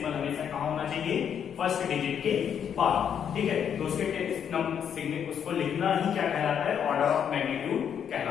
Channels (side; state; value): right; quieter; 8.3 dB